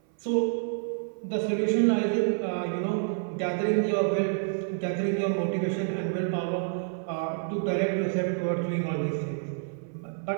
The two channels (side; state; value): left; silent; 57 dB below the other